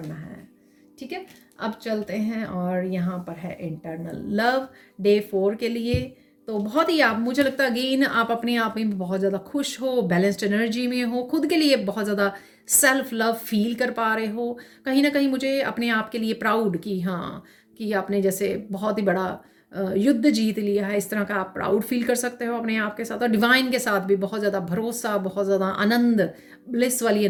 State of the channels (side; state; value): both; identical; correlation 1.00